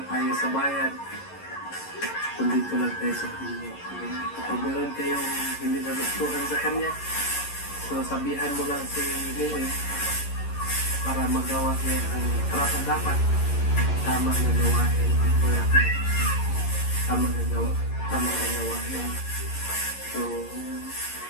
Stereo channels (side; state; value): right; late; 11 ms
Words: tayo sa bayan. Kung dito lang tayo sa pinya. Kapag meron kayong hindi nagustuhan sa kanya, so sabihan mo lang si Neri para magawa niya ang karapat dapat. Tama na gawain. Tama na gawain. So,